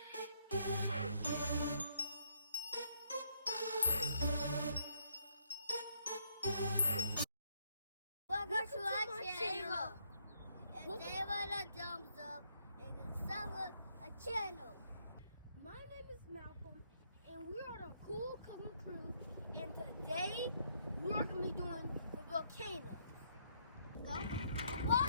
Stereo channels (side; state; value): both; inverted; correlation -0.73